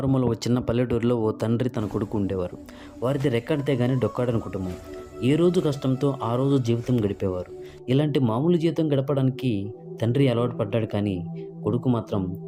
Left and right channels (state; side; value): identical; both; correlation 1.00